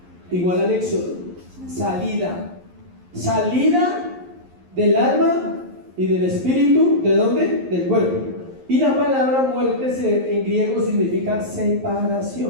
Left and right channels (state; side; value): late; left; 11 ms